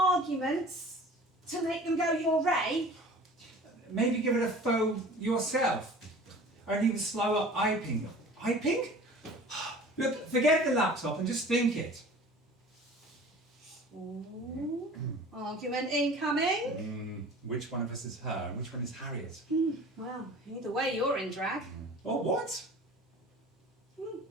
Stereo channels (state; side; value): normal; both; correlation 0.43